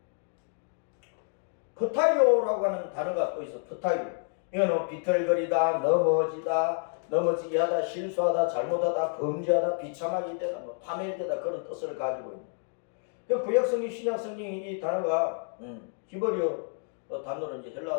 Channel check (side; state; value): right; silent; 58 dB below the other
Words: 프타이오라고 하는 단어가 또 있어. 프타이오. 이거는 비틀거리다, 넘어지게 하다, 실수하다, 잘못하다, 범죄하다, 비참하게 되다, 파멸되다, 그런 뜻을 가지고 있는. 구약성경, 신약성경이 이 단어가 히브리어 단어로, 이제